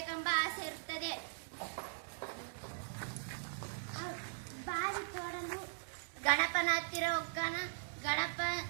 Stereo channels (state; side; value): silent; left; digital silence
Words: ಆಸೆ ಇರುತ್ತದೆ. ಬಾವಿ ತೋಡಲು ಗಣಪನ ಹತ್ತಿರ ಹೋಗ್ತಾನ. ಗಣಪ